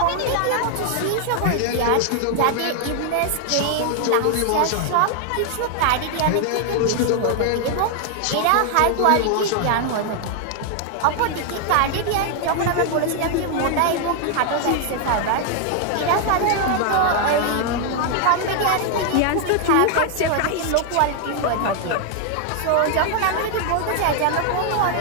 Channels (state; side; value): different; both; correlation 0.00